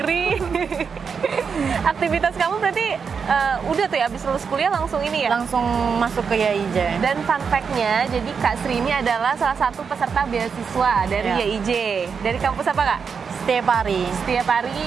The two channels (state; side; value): quieter; left; 6.1 dB